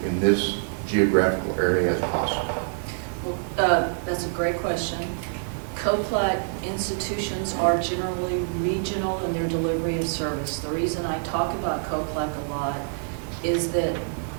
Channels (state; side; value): silent; left; digital silence